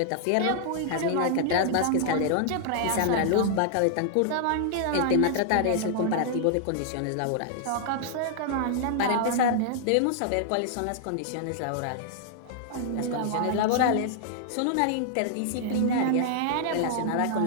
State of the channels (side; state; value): both; different; correlation -0.01